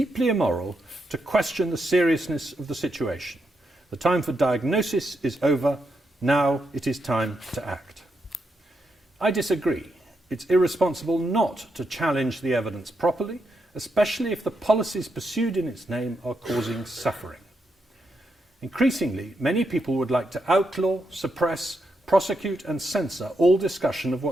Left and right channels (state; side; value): normal; both; correlation 0.82